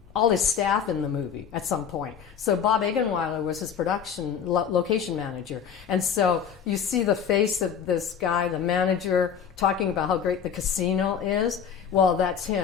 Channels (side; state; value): right; quieter; 7.6 dB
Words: all his staff in the movie at some point. So Bob Egenweiler was his production location manager. And so you see the face of this guy, the manager, talking about how great the casino is. Well, that's